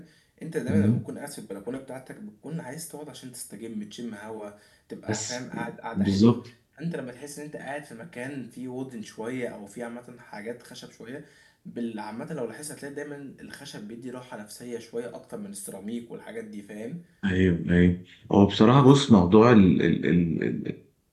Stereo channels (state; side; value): identical; both; correlation 1.00